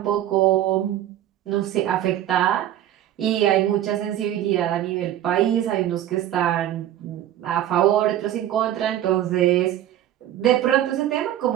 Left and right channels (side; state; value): left; quieter; 12.2 dB